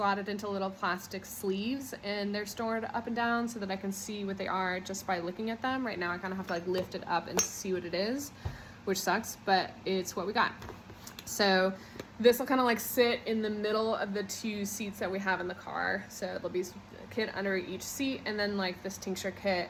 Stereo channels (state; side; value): identical; both; correlation 1.00